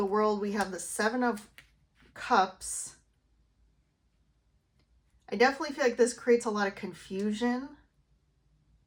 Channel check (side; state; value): both; identical; correlation 1.00